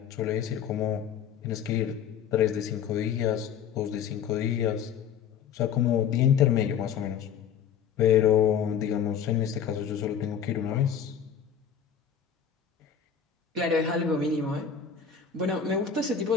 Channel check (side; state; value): right; quieter; 7.8 dB